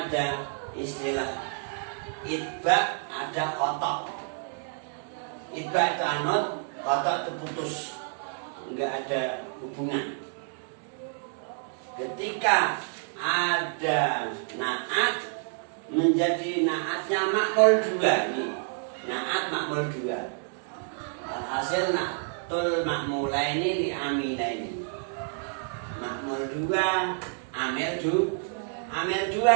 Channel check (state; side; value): silent; left; 59 dB below the other